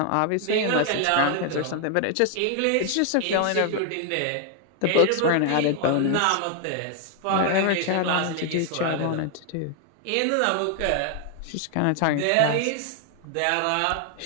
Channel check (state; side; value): different; both; correlation 0.00